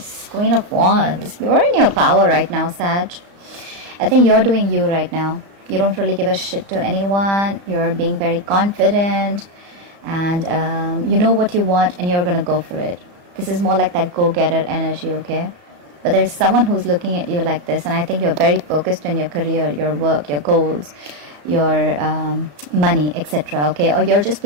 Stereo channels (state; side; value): late; left; 34 ms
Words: Queen of Wands. You're in your power right now, Sag. I think you're doing you right now. You don't really give a shit to anyone. You're being very confident. And you know what you want and you're going to go for it. This is more like that go-getter energy, okay? But there's someone who's looking at you like this. And I think you're very focused on your career, your work, your goals, your money, etc. Okay? Or you're just